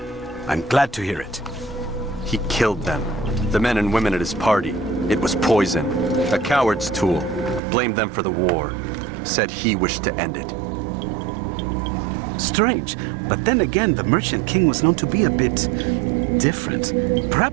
I'm glad to hear it. He killed them. The men and women at his party. It was poison. A coward's tool. Blamed them for the war. Said he wished to end it. Strange, but then again, the Merchant King was known to be a bit different.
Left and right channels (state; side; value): drops out; left; at 7.6 s